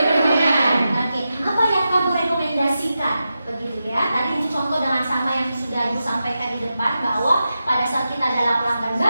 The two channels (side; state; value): both; inverted; correlation -0.90